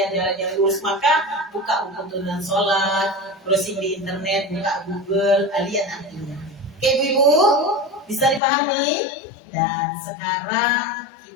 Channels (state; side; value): drops out; right; at 8.4 s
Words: jalan yang lurus. Maka buka buku tuntunan sholat, browsing di internet, buka Google, lihat artinya. Oke ibu, bisa dipahami? Dan sekarang